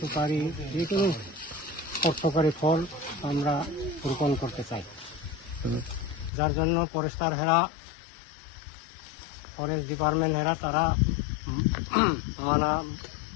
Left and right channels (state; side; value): drops out; right; at 6.3 s